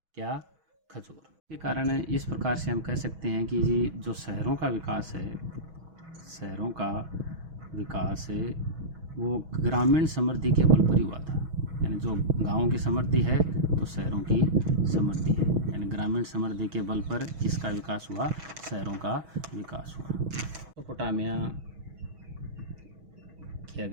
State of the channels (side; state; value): left; late; 6.2 ms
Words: क्या? खजूर। के कारण इस प्रकार से हम कह सकते हैं कि जी जो शहरों का विकास है, शहरों का विकास है वो ग्रामीण समृद्धि के बल पर ही हुआ था। यानी जो गांवों की समृद्धि है तो शहरों की समृद्धि है, यानी ग्रामीण समृद्धि के बल पर किसका विकास हुआ? शहरों का विकास हुआ। मेसोपोटामिया की